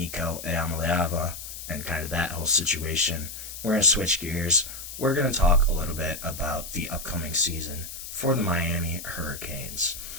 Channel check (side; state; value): left; noise; hiss, 10 dB below the sound